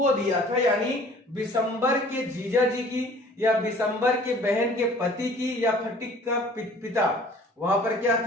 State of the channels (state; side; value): normal; both; correlation 0.51